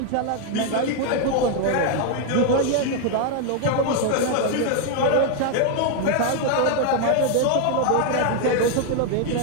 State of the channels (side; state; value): both; different; correlation 0.00